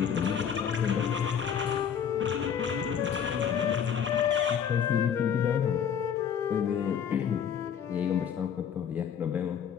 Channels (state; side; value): quieter; right; 8.0 dB